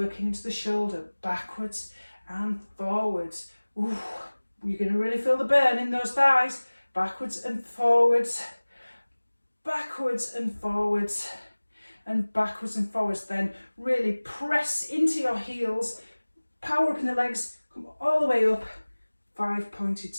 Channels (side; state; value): both; inverted; correlation -1.00